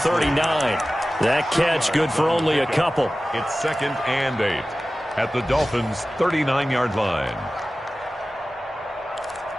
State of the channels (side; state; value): both; normal; correlation 0.96